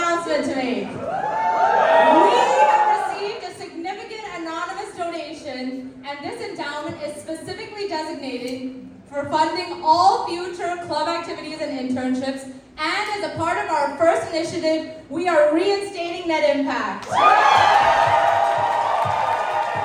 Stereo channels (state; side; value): identical; both; correlation 1.00